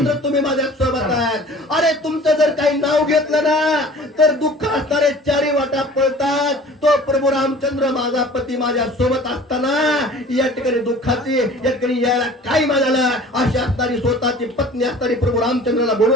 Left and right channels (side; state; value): both; normal; correlation 0.46